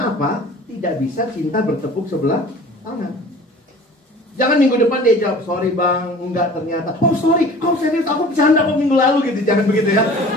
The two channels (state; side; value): normal; both; correlation 0.45